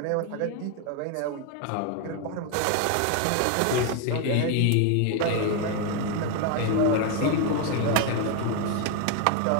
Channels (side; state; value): both; different; correlation 0.01